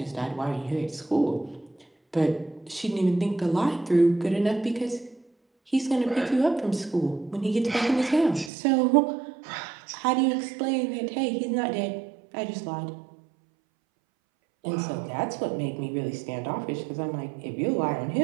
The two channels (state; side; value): drops out; left; at 8.5 s